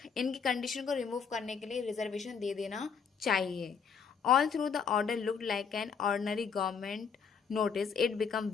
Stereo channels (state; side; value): quieter; right; 6.3 dB